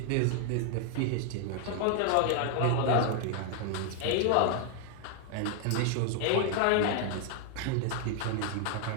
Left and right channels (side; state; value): both; different; correlation 0.00